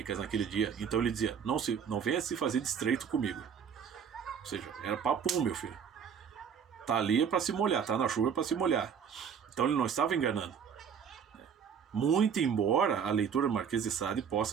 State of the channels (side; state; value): left; quieter; 7.3 dB